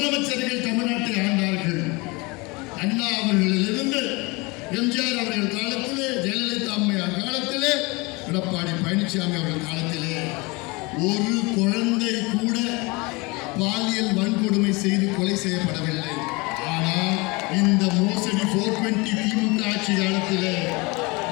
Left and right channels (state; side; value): quieter; right; 26.0 dB